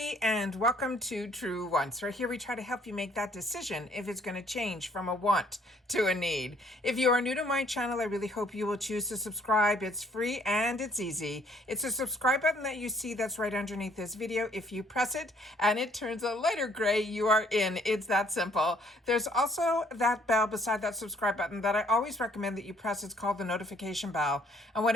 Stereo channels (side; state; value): both; normal; correlation 0.63